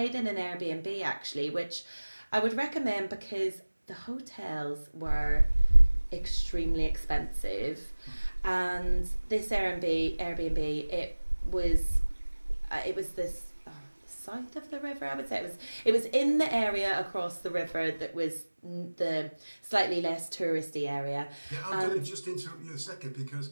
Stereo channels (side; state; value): both; inverted; correlation -1.00